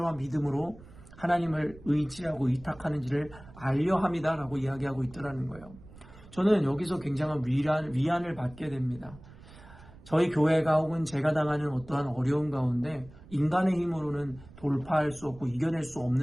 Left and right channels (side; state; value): right; noise; rumble, 20 dB below the sound